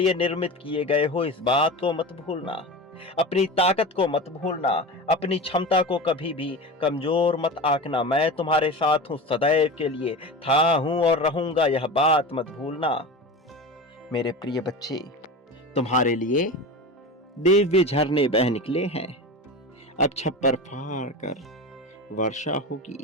निर्मित किए गए हो, इस बात को मत भूलना। अपनी ताकत को मत भूलना, अपनी क्षमता को कभी भी कमजोर मत आंकना। मैं तुम्हारे साथ हूं, सदैव के लिए था, हूं और रहूंगा, यह बात मत भूलना। मेरे प्रिय बच्चे, तुम्हारे लिए दिव्य झरने बह निकले हैं। अब छप्पर फाड़ कर वर्षा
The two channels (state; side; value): normal; both; correlation 0.28